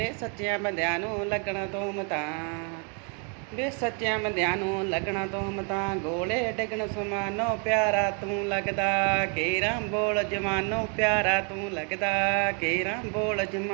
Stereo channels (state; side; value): quieter; left; 37.8 dB